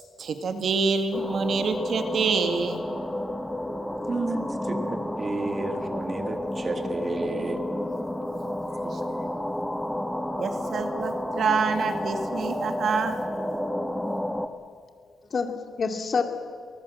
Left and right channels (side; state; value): both; normal; correlation 0.85